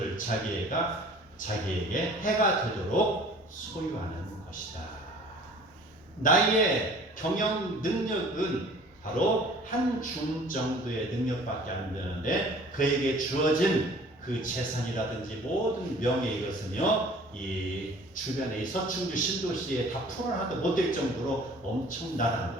자기에게 해가 되도록 소유하는 것이다. 나의 경영 능력은 바로 한 줌 정도의 능력밖에 안 되는데, 그에게 주어진 그 재산이라든지 모든 명예, 이것은요 이 주변의 서충주 신도시에 다 풀어놔도 못될 정도로 엄청나다는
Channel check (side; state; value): both; normal; correlation 0.49